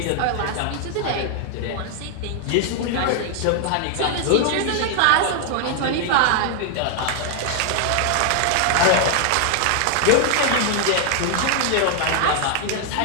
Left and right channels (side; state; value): both; different; correlation 0.00